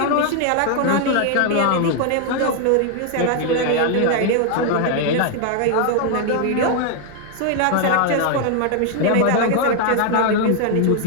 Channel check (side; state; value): both; different; correlation 0.00